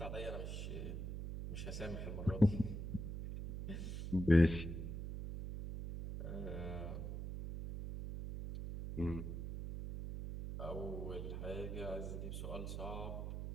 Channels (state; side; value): noise; right; hum, 5 dB below the sound